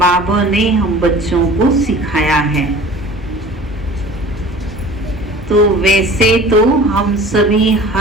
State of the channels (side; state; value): both; normal; correlation 0.43